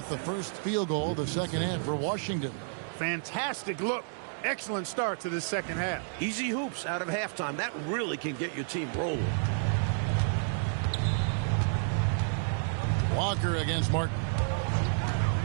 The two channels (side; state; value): left; silent; digital silence